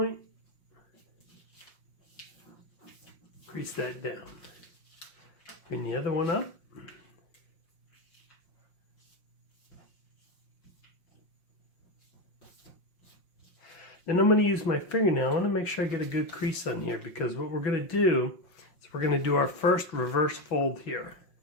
crease that down. Bring the other one up. Then I'm going to use my fingernail. I want to make sure I get a good crease on here, because what we're going to do is we're going to do our first reverse fold here.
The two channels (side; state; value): right; late; 5.6 ms